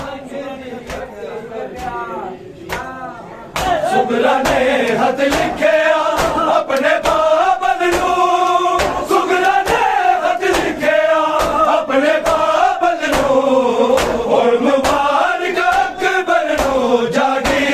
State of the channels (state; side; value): identical; both; correlation 1.00